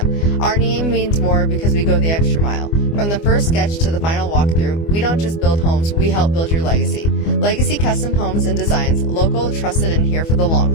Our name means more because we go the extra mile. From the first sketch to the final walkthrough, we don't just build homes, we help build your legacy. Legacy Custom Homes and Designs, local, trusted, and here for the long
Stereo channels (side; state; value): right; late; 24 ms